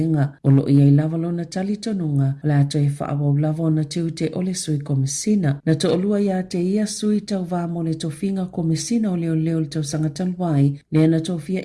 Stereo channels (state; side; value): identical; both; correlation 1.00